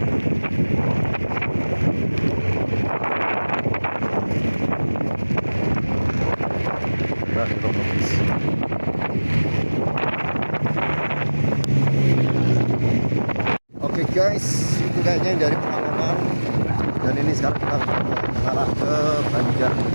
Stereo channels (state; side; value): inverted; both; correlation -1.00